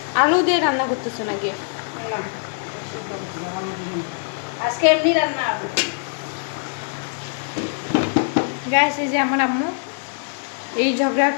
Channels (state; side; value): silent; right; digital silence